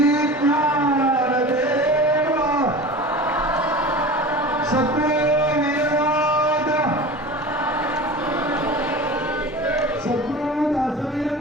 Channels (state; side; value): normal; both; correlation 0.35